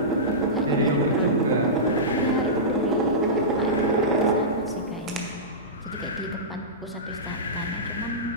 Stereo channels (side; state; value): both; normal; correlation -0.17